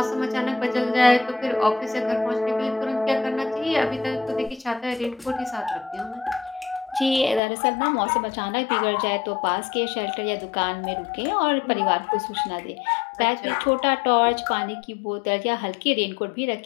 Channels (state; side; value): drops out; right; at 7.4 s